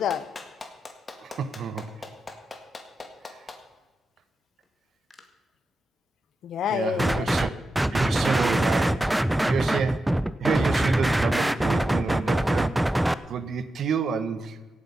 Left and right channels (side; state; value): both; normal; correlation 0.89